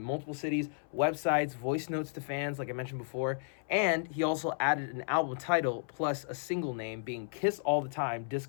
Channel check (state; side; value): silent; right; 56 dB below the other